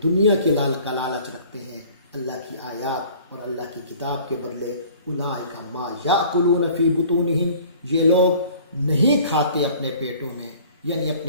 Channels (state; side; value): inverted; both; correlation -0.50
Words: دنیا کی لالچ رکھتے ہیں اللہ کی آیات اور اللہ کی کتاب کے بدلے، اولئک ما یاکلون فی بطونہم، یہ لوگ نہیں کھاتے اپنے پیٹوں میں، یعنی